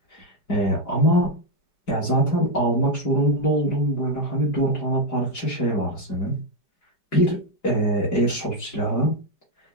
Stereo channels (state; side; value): late; right; 4.8 ms